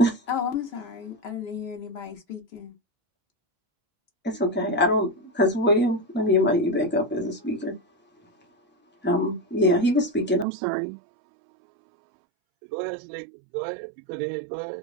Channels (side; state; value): left; drops out; at 10.5 s